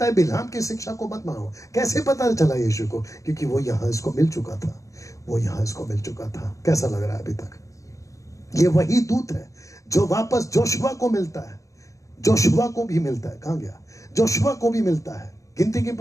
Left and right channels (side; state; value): right; late; 0.16 ms